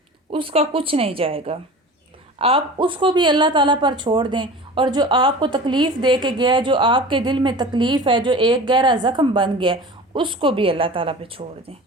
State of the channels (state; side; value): normal; both; correlation 0.37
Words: उसका कुछ नहीं जाएगा। आप उसको भी अल्लाह ताला पर छोड़ दें। और जो आपको तकलीफ़ दे के गया है, जो आपके दिल में तकलीफ़ है, जो एक गहरा ज़ख्म बन गया, उसको भी अल्लाह ताला पे छोड़ दें।